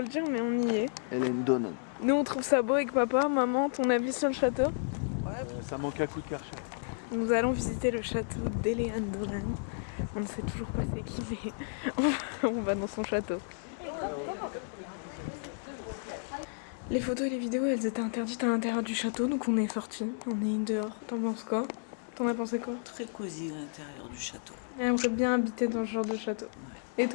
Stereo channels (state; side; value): silent; right; digital silence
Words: le dire, mais on y est. Hélène Donan. Nous, on trouve ça beau avec papa. Maman, ton avis sur le château? Ça manque à coup de karcher. Nous allons visiter le château d'Hélène Dolan. On ne sait toujours pas c'est qui, mais on va dans son château. Les photos et les vidéos, elles étaient interdites à l'intérieur du château, donc on est sortis. On est dehors. T'en penses quoi? T'en as pensé quoi? Très cosy à l'intérieur du château. J'aimerais bien habiter dans ce genre de château. Et